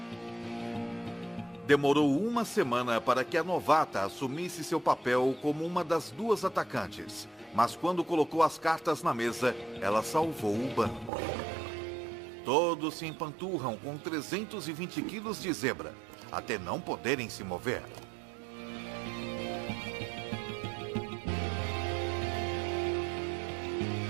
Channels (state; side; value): drops out; left; at 11.1 s